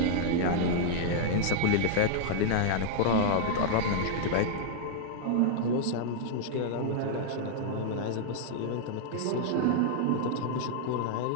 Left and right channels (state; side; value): different; both; correlation -0.01